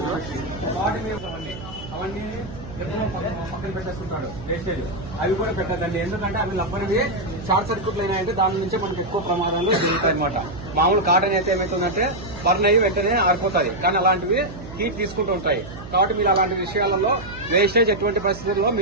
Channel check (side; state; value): right; noise; hum, 13 dB below the sound